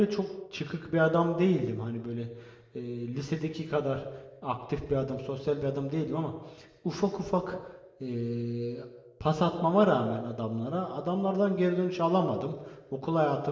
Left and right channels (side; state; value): both; identical; correlation 1.00